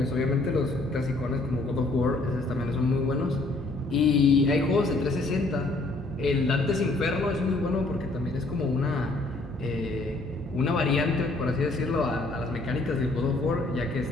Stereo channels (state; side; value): quieter; right; 3.0 dB